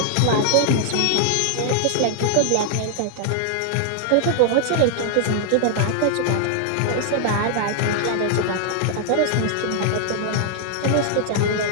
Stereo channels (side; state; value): both; different; correlation -0.01